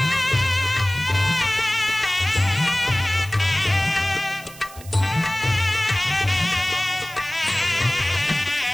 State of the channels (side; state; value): right; noise; hiss, 18 dB below the sound